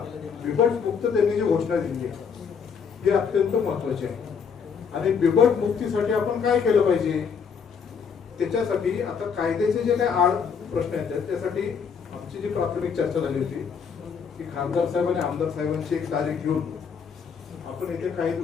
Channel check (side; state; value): right; quieter; 6.4 dB